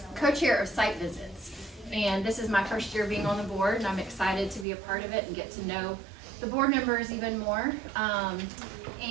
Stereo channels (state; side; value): drops out; left; at 4.7 s